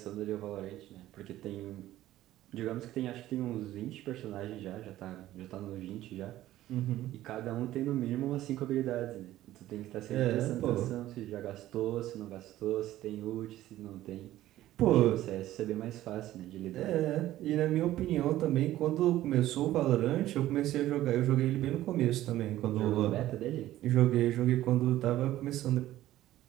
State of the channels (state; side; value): quieter; left; 14.5 dB